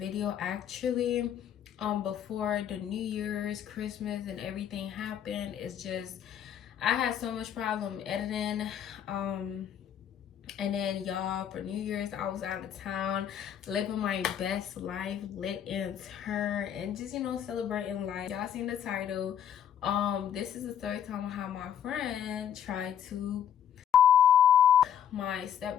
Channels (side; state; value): right; quieter; 9.5 dB